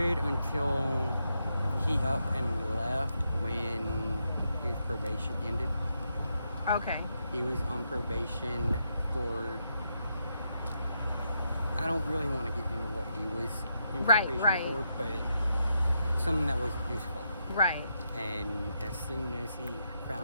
until he up and left when his probation ended. Okay. He was on probation for, I don't really want to get into what he was in Right, probation right. for, but something that wasn't his fault. Right. And as soon as he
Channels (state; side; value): inverted; both; correlation -0.81